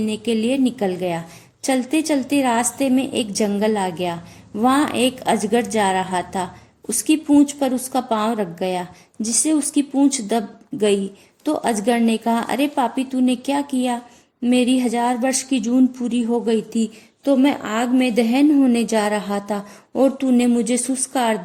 के लिए निकल गया। चलते चलते रास्ते में एक जंगल आ गया। वहाँ एक अजगर जा रहा था। उसकी पूंछ पर उसका पांव रख गया, जिससे उसकी पूंछ दब गई। तो अजगर ने कहा, अरे पापी, तूने क्या किया? मेरी 1000 वर्ष की जून पूरी हो गई थी, तो मैं आग में दहन होने जा रहा था और तूने मुझे सुस्कार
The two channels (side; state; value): both; identical; correlation 1.00